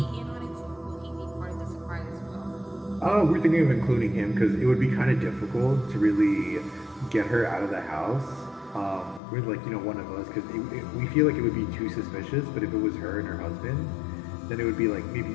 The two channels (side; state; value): right; drops out; at 9.2 s